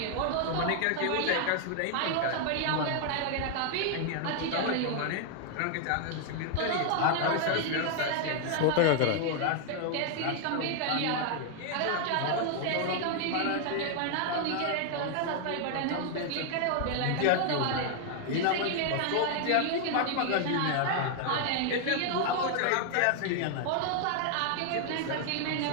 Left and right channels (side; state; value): both; different; correlation 0.00